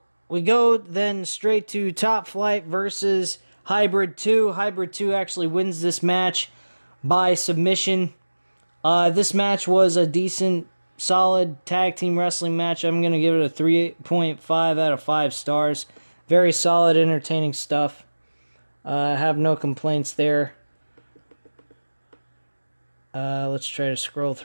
we go then straight to Top Flight versus Hybrid 2. Hybrid 2 actually wins this match by submission. This match was a decent, solid tag team wrestling match. I'm going to give it a 3.5 out of 5 stars. Very solid, entertaining stuff. I have no complaints there. Let's try to scroll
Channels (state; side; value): inverted; both; correlation -1.00